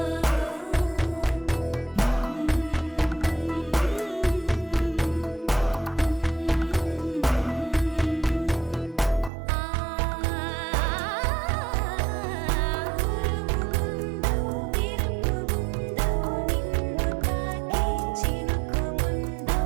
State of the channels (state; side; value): drops out; left; at 9.3 s